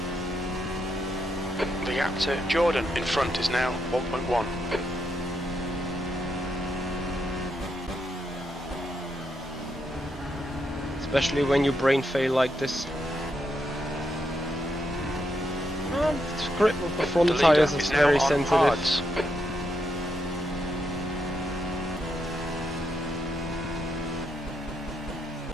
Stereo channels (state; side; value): normal; both; correlation 0.81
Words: The gap to Jordan in front is now 1.1. Especially when you brain fail like this. The grip of the front The leader tires is now very on sensitive. hards.